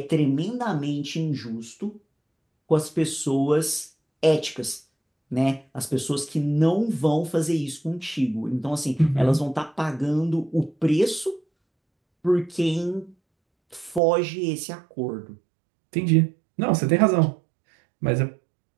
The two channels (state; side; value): drops out; left; at 14.0 s